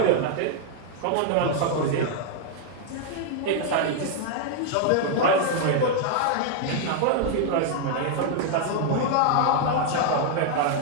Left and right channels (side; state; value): both; different; correlation 0.00